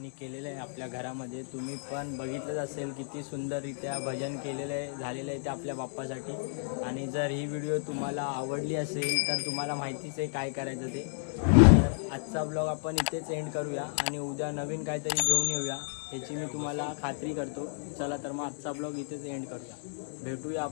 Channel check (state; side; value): silent; right; digital silence